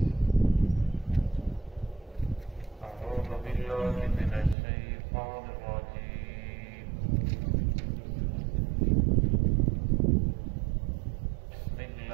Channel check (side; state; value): left; drops out; at 4.5 s